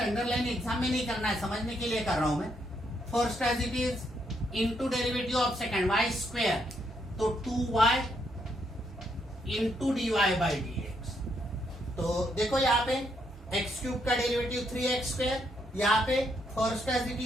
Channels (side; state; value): both; normal; correlation 0.76